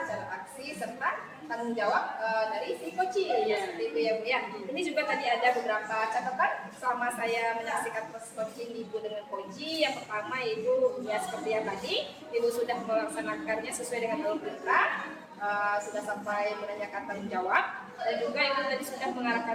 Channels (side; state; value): both; identical; correlation 1.00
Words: aksi, serta tanggung jawab dari si coaching. Seperti itu ya Bu ya. Ini juga tadi ada beberapa catatan selama saya menyaksikan proses coaching Ibu dengan coaching. Yang pertama Ibu ya seperti yang tadi, Ibu sudah melaksanakannya sesuai dengan alur kita. Sudah sampai menanyakan tanggung jawab, dan juga Ibu tadi sudah